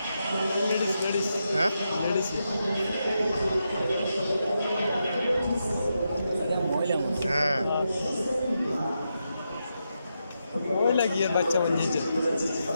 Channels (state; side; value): inverted; both; correlation -0.85